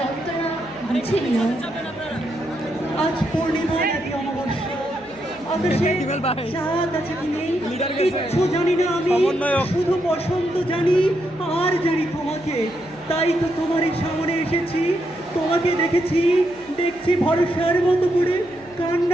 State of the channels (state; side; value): noise; right; hum, 27 dB below the sound